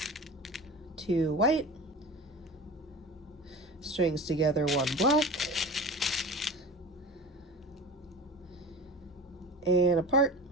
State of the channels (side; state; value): both; normal; correlation 0.34